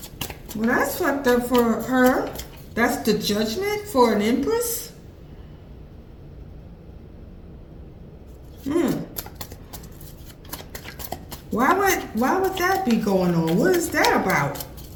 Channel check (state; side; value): identical; both; correlation 1.00